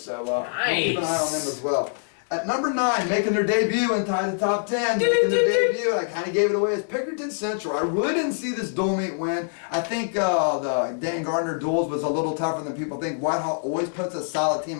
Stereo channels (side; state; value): right; silent; digital silence